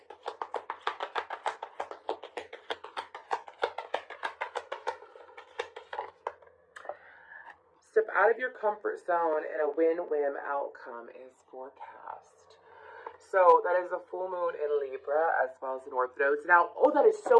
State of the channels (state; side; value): identical; both; correlation 1.00